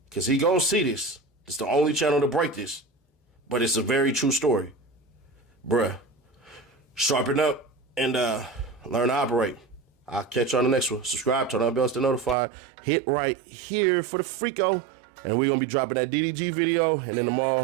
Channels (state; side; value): drops out; left; at 12.4 s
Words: because he going to see this. It's the only channel to break this, but it's a very true story. Bruh, sharpen up and learn to operate. I'll catch you on the next one. Subscribe, turn on bells to notify. Hit right here for the Freako. And we're going to be dropping that DDG video. And then